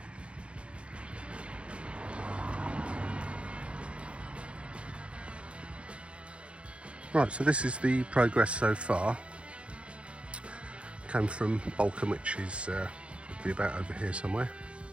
Right, so this is the progress so far. Came from Balcombe, which is would be about over here somewhere.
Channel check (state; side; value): late; left; 0.059 ms